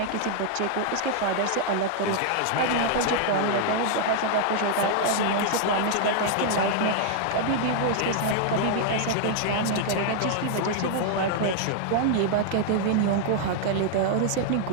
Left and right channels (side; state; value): both; different; correlation 0.00